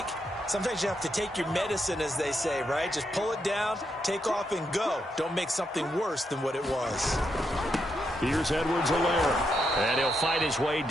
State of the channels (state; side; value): normal; both; correlation 0.81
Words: Sometimes you have to take your medicine, as they say, right? Just pull it down, take off, and go. Don't make something worse than what it was. Here's Edwards-Helaire. And he'll fight his way